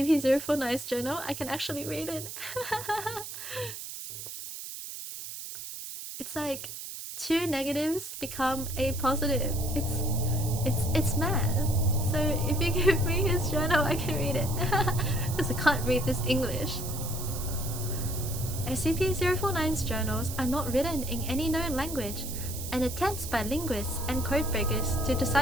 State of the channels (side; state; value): right; noise; hiss, 9 dB below the sound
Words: journal, I can actually read it. It's like 2 negatives become a positive. It's math. So if you give me his journal, I can read it. Because I can't read this English. SCP-049's journals are not written in any known language, and attempts by linguists and codebreakers to